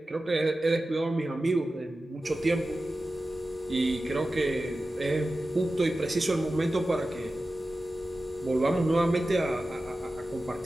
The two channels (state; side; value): normal; both; correlation 0.94